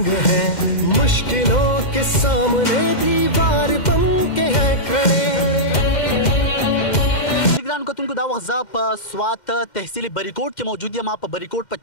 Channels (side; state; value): right; late; 2.1 ms